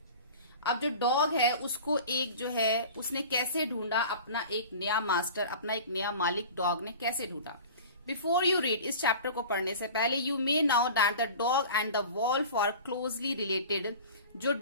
अब जो डॉग है उसको एक जो है उसने कैसे ढूंढा अपना एक नया मास्टर, अपना एक नया मालिक डॉग ने कैसे ढूंढा। बिफोर यू रीड, इस चैप्टर को पढ़ने से पहले you may now that the dog and the wolf are closely related. जो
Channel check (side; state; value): both; inverted; correlation -0.38